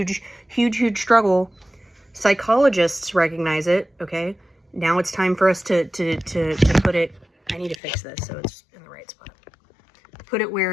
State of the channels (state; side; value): drops out; right; at 7.8 s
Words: struggle. Psychologists recognize it, okay? Now it's time for us to put it... I need to fix this so it's in the right spot. Put it